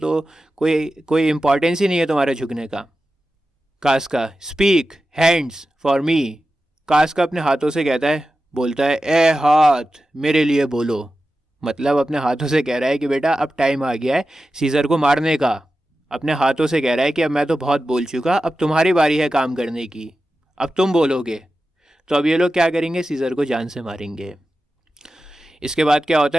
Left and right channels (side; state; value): both; normal; correlation 0.93